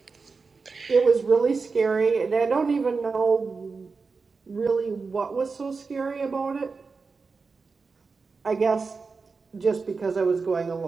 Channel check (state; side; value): quieter; left; 4.6 dB